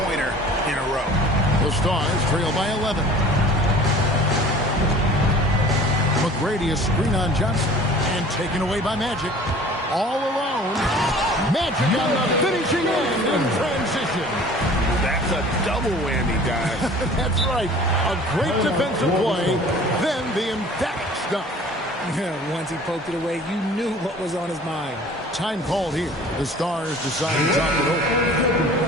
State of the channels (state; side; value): normal; both; correlation 0.46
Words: in a row. The Stars trail by 11. McGrady, a screen on Johnson, and taken away by Magic. All alone. Magic on the finishing end in transition. That's a double whammy, guys. That's right. A great defensive play, then the emphatic stuff. Once he poked it away, you knew what was on his mind. Time called here. The Stars decide to talk it